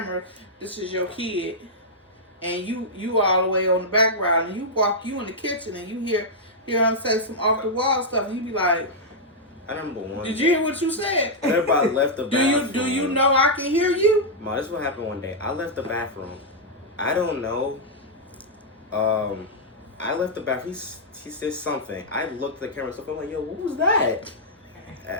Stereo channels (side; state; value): both; normal; correlation -0.07